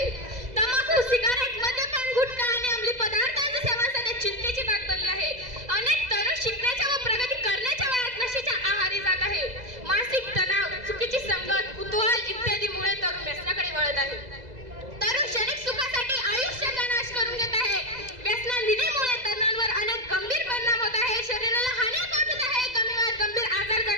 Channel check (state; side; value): late; left; 2.0 ms